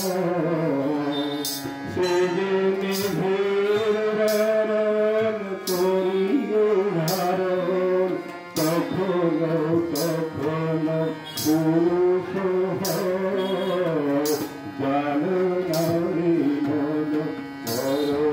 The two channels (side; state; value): both; identical; correlation 1.00